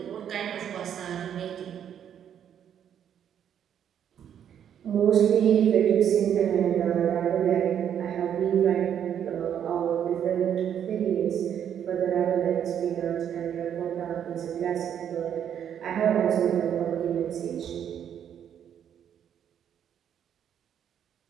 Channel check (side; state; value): left; quieter; 9.2 dB